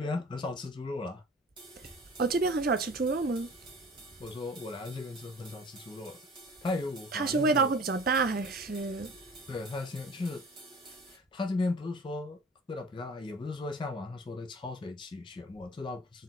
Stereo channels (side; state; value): both; normal; correlation 0.44